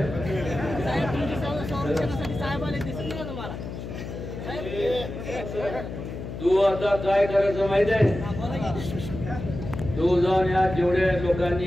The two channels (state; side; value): noise; left; hum, 8 dB below the sound